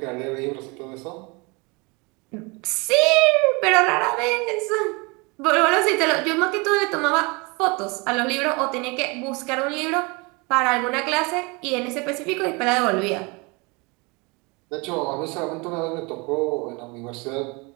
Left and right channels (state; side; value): quieter; left; 28.3 dB